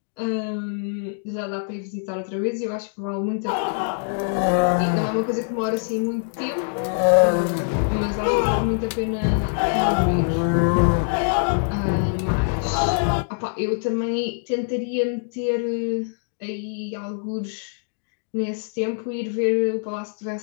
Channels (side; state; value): right; silent; digital silence